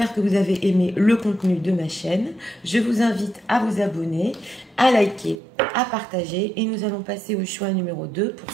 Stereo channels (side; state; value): left; drops out; at 5.4 s